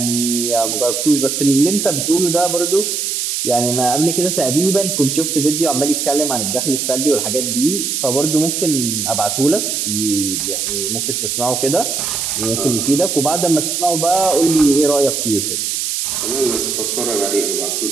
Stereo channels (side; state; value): right; noise; hiss, 1 dB below the sound